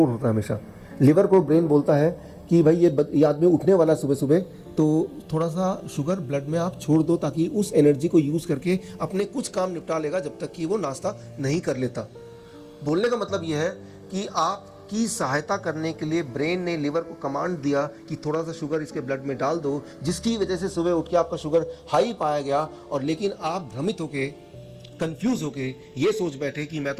होता है हमेशा। लिवर को ब्रेन बोलता है कि भाई ये आदमी उठने वाला सुबह सुबह, तो थोड़ा सा शुगर ब्लड में आप छोड़ दो ताकि उस एनर्जी को यूज़ करके अपने कुछ काम निपटा लेगा जब तक कि वो नाश्ता नहीं कर लेता। बोलने का मतलब ये है कि आपकी सहायता करने के लिए ब्रेन ने लिवर को कमांड दिया कि थोड़ा सा शुगर इसके ब्लड में डाल दो, जिसकी वजह से सुबह उठ के आपका शुगर हाई पाया गया, और लेकिन आप भ्रमित होके, कंफ्यूज होके ये सोच बैठे कि मैं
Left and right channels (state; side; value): identical; both; correlation 1.00